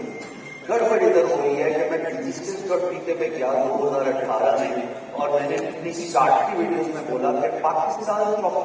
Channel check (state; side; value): identical; both; correlation 1.00